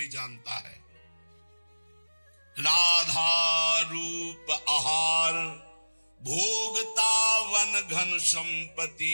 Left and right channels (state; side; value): inverted; both; correlation -1.00